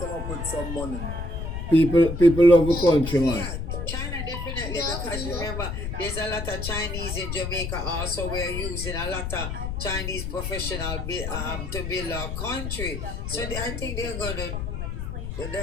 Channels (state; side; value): noise; left; rumble, 4 dB below the sound